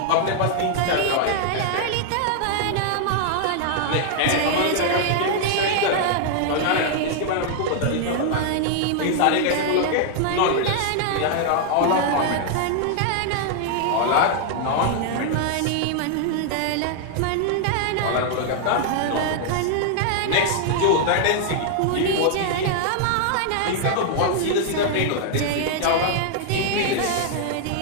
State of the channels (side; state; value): both; different; correlation 0.00